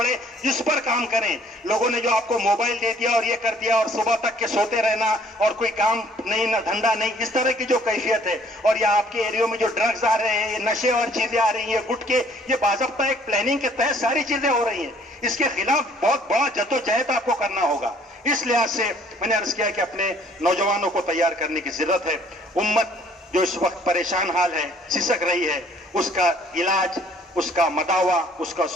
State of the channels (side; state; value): both; normal; correlation 0.59